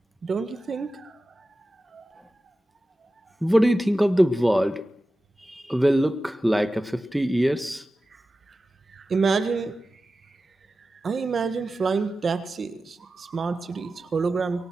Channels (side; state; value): both; normal; correlation 0.94